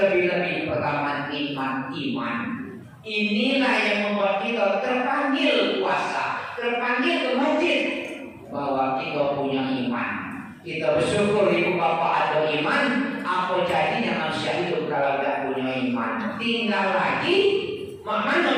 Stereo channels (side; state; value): both; identical; correlation 1.00